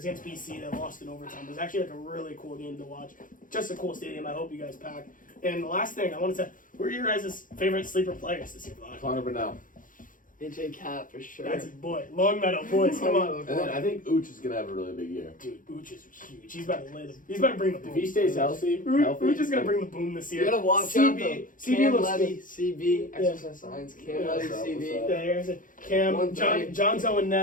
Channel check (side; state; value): right; late; 0.39 ms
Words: against BC. They lost in overtime. It was actually like a really cool game to watch. Just a cool stadium. I hope you guys pack. And the last thing I wanted to say, who are your guys' favorite sleeper players this year, Vaughn? Connor Burnell. AJ Cat for sure. That's his boy. Long Meadow boys, come on. And then I think Ooch is going to have a really big year. Dude, Ooch is huge. He's about to lay the. He's about to bring the boom. If he stays healthy, Ooch is gonna bring the boom this year. You gotta watch out though. CB Cam looks Levy, good. CB, exercise science. Cam Yeah. Levy, What's up, CB. what's up? Yeah, here's it. Cam, 130. Johnzo and